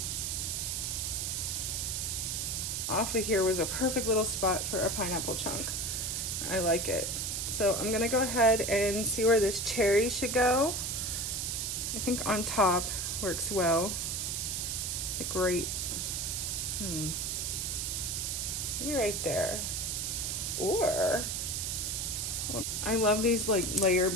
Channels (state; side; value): noise; right; hiss, 1 dB below the sound